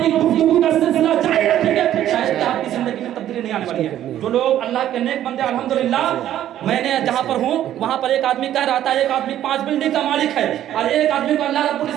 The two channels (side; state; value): left; quieter; 11.9 dB